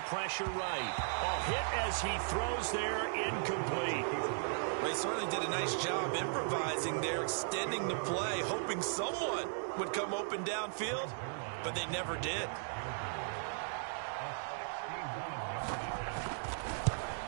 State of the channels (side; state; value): left; silent; digital silence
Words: pressure right. A hit as he throws there, incomplete. They certainly did a nice job improvising there, extending the play, hoping someone would come open downfield, but they never did.